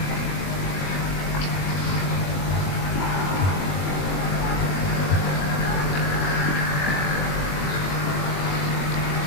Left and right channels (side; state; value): right; late; 21 ms